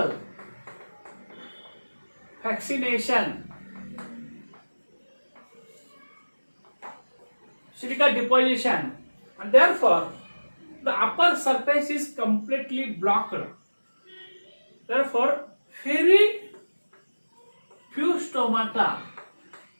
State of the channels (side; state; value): both; inverted; correlation -1.00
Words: vaccination, silica deposition, and therefore the upper surface is completely blocked. Therefore, very few stomata